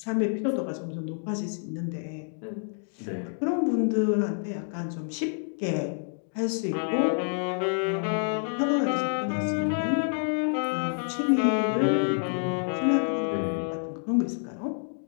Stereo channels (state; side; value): silent; right; digital silence